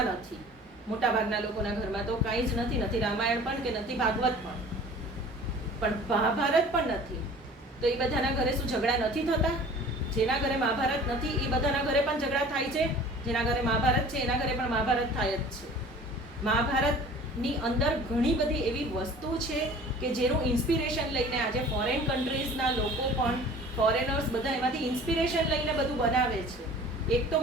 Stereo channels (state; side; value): normal; both; correlation 0.45